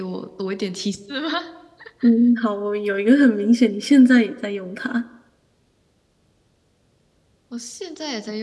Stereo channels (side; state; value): both; identical; correlation 1.00